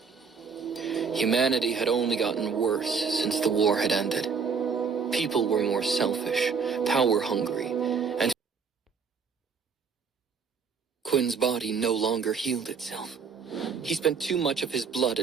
Humanity had only gotten worse since the war had ended. People were more selfish, power-hungry, and Quinn's body no longer healed itself. He spent too much of his blood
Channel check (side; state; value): left; quieter; 5.8 dB